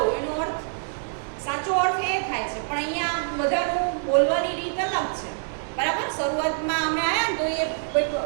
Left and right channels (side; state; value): left; silent; digital silence